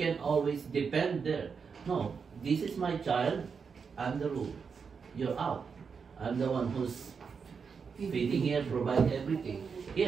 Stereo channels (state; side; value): quieter; left; 5.8 dB